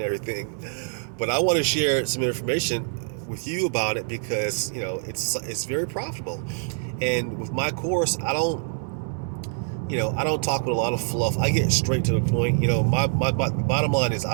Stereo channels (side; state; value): left; silent; 62 dB below the other